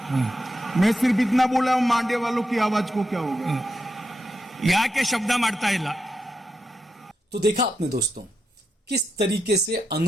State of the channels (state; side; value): normal; both; correlation 0.85